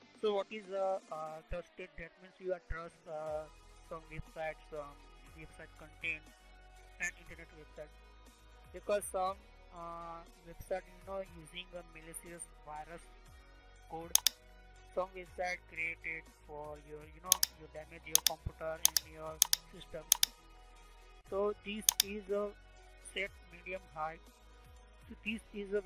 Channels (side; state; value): both; identical; correlation 1.00